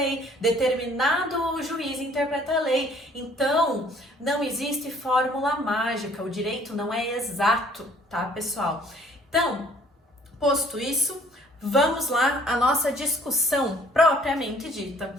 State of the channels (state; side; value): normal; both; correlation 0.58